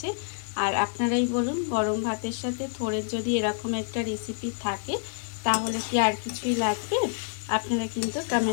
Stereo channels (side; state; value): right; silent; digital silence